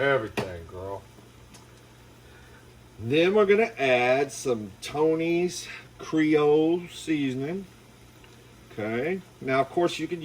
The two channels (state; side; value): identical; both; correlation 1.00